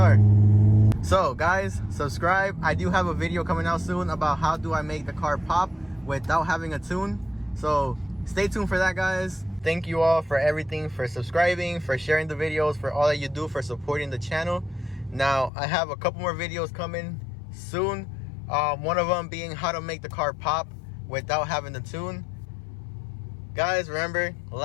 So guys, subscribe. I do have a video coming out soon about how do I make the car pop without having a tune. So stay tuned for that, guys. Thank you all for everything, for subscribing, for sharing the videos, for all that you do, for supporting the channel. Now I have a couple more videos coming soon. One of them being how to make the car pop without having the tune. Guys, remember,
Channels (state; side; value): drops out; right; at 15.5 s